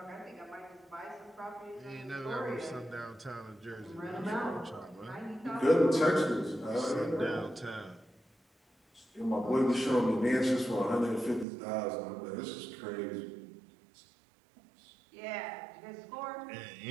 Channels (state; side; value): drops out; left; at 11.5 s